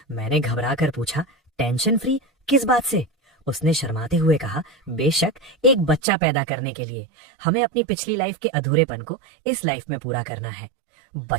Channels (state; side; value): drops out; left; at 6.0 s